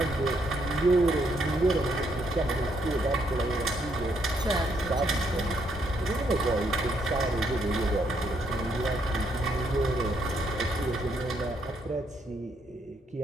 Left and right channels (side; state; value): both; normal; correlation 0.74